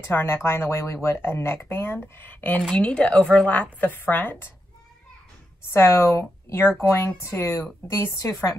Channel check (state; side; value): normal; both; correlation 0.85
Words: to our neckline the way we would a neckband. And you need to overlap the front. So you're going to, these two